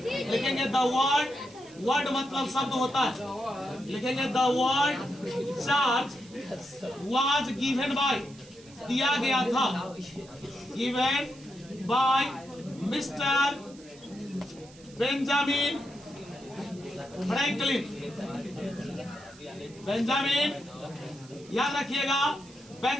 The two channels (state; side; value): noise; right; hiss, 23 dB below the sound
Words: लिखेंगे द वर्ड मतलब शब्द होता है। लिखेंगे the word charge was given by, दिया गया था, given bye mister Benjamin Franklin. Benjamin, याद रखिएगा,